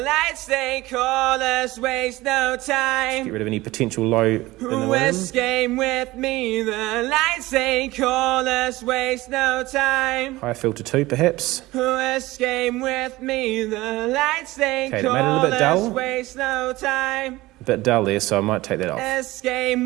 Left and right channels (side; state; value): left; quieter; 19.0 dB